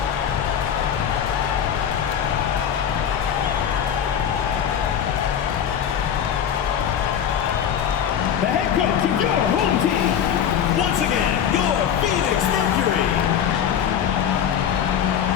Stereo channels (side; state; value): right; quieter; 8.8 dB